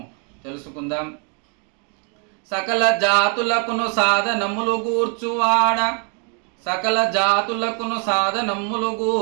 తెలుసుకుందాం. సకల జాతులకును సాధనములు గూర్చువాడ, సకల జాతులకును సాధనమ్ములు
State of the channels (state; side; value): quieter; left; 37.6 dB